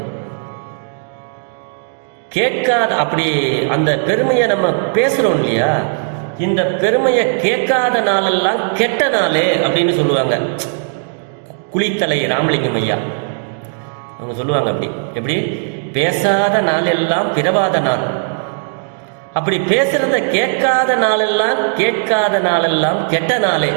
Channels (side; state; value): left; silent; digital silence